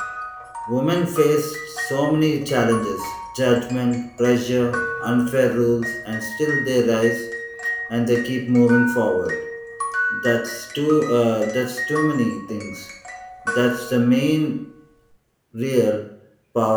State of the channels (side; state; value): both; identical; correlation 1.00